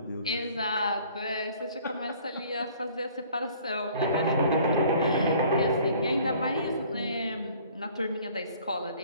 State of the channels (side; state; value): both; inverted; correlation -0.54